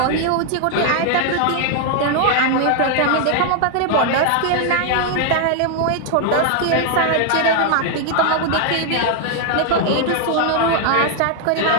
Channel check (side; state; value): both; different; correlation 0.00